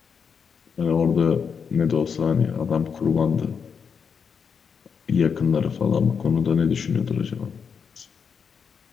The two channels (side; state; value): right; quieter; 6.4 dB